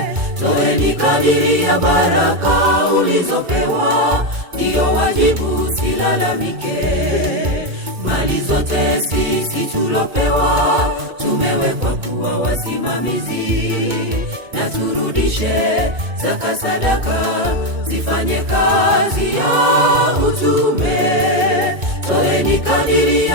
Toeni kadiri ya baraka ulizopewa, ndiyo wajibu, silalamike. Mali zote sisi tulopewa, tumewekwa kuwa wasimamizi, na turudishe zaka, sadaka, zifanye kazi ya utume. Toeni kadiri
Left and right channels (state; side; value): late; left; 2.2 ms